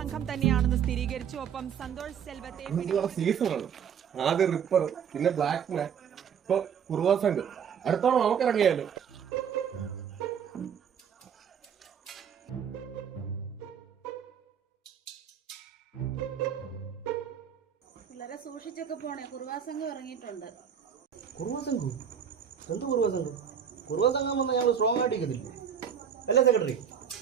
തന്നെയാണെന്ന് സ്ഥിരീകരിച്ചു. ഒപ്പം സന്തോഷ് സെൽവത്തെ സീസണാണ്. ആദ്യം റിപ്പർ, പിന്നെ ബ്ലാക്ക് മാൻ, ഇപ്പൊ കുറുവ സംഘം. അടുത്തോളം നമുക്ക് ഇറങ്ങിയാലോ? വളരെ സൂക്ഷിച്ചൊക്കെ പോണേ. കുറുവാ സംഘം ഇറങ്ങിയിട്ടുണ്ട്. കുറുവ സംഘം? എന്ത് കുറുവ സംഘം? കുറുവ സംഘം വന്നാൽ ഞങ്ങൾ സ്ട്രോങ് ആയിട്ട് ഇരിക്കത്തില്ല അല്ലേ സെക്രട്ടറി?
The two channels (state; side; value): quieter; left; 7.9 dB